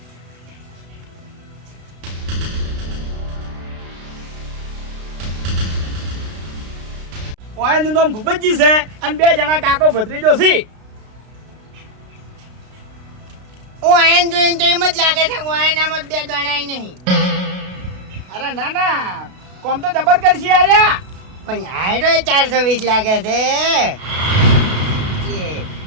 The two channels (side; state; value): left; late; 32 ms